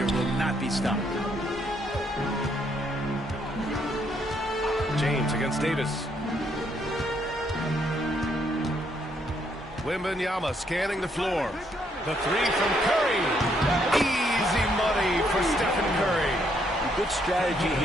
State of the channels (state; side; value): normal; both; correlation 0.72